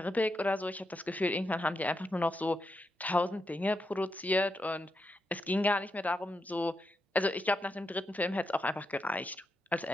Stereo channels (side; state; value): both; normal; correlation 0.84